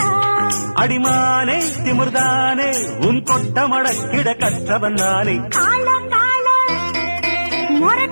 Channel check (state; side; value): inverted; both; correlation -1.00